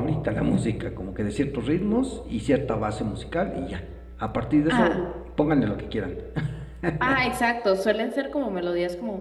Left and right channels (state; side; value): identical; both; correlation 1.00